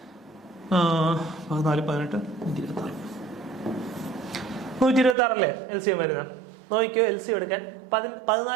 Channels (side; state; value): left; drops out; at 5.2 s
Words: 14 18 126 അല്ലേ LCM വരുന്നത്? നോക്കിയോ, LCM എടുക്കാൻ